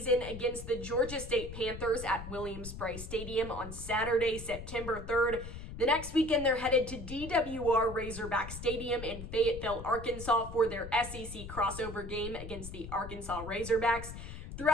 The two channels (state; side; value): noise; left; rumble, 10 dB below the sound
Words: against the Georgia State Panthers at Williams-Brice Stadium on Saturday, September 3rd. The next weekend, they're headed to DWR Razorback Stadium in Fayetteville, Arkansas for their SEC crossover game against the Arkansas Razorbacks.